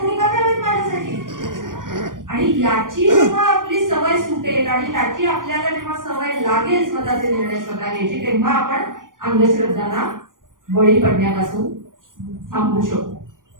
का घ्यावेत माझ्यासाठी. आणि याची जेव्हा आपली सवय सुटेल आणि याची आपल्याला जेव्हा सवय लागेल स्वतःचे निर्णय स्वतः घ्यायची, तेव्हा आपण अंधश्रद्धांना बळी पडण्यापासून थांबवू शकतो.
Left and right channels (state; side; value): late; left; 0.90 ms